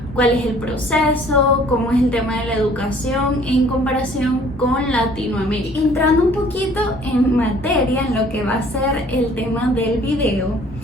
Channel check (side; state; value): both; normal; correlation 0.55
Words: Cuál es el proceso, cómo es el tema de la educación en comparación con Latinoamérica. Entrando un poquito en materia, en lo que va a ser el tema del video,